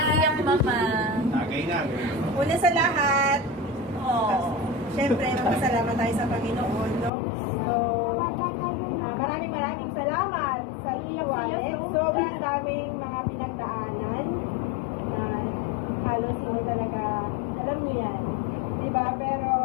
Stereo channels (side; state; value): right; drops out; at 7.1 s